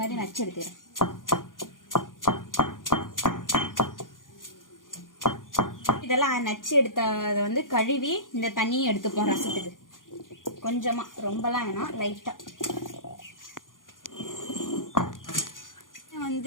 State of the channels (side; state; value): right; late; 0.90 ms